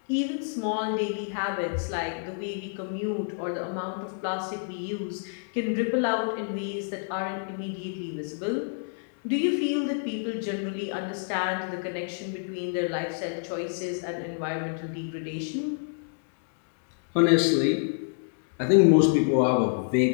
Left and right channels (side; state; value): right; silent; digital silence